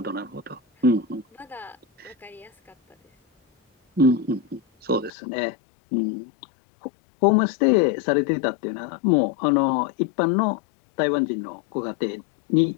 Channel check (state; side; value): drops out; right; at 5.1 s